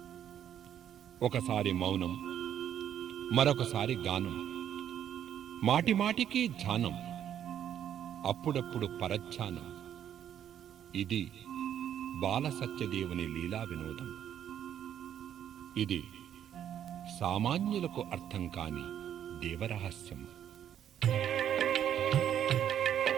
ఒకసారి మౌనం, మరొకసారి గానం, మాటిమాటికి ధ్యానం, అప్పుడప్పుడు పరధ్యానం. ఇది బాల సత్యదేవుని లీలా వినోదం. ఇది సామాన్యులకు అర్థం కాని దేవరహస్యం.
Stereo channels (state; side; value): quieter; left; 9.9 dB